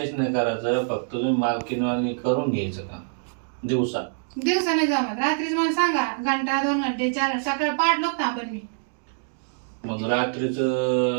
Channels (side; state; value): left; silent; digital silence